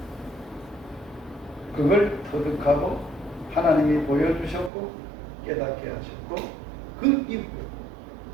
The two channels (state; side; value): drops out; left; at 4.7 s